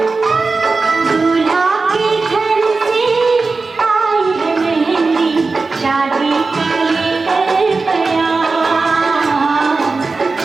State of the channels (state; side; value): quieter; left; 4.0 dB